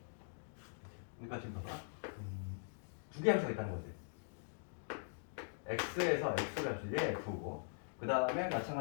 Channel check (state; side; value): silent; right; digital silence